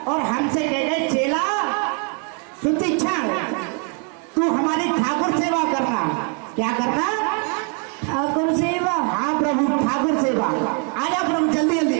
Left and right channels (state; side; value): quieter; left; 38.2 dB